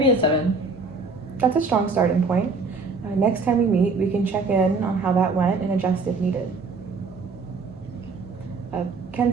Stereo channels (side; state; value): left; quieter; 4.2 dB